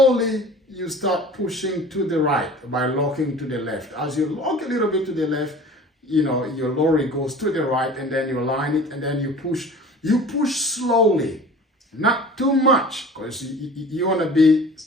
you start pushing to the right by locking to the left. As you lock a little bit to the left, your lorry goes to the right, and then you line it, and then you push slowly, not too much, because you want to be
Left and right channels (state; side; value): normal; both; correlation 0.42